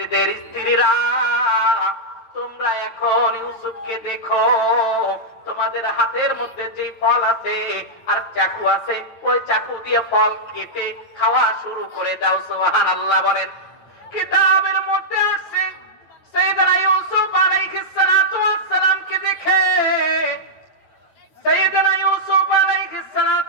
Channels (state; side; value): late; right; 9.0 ms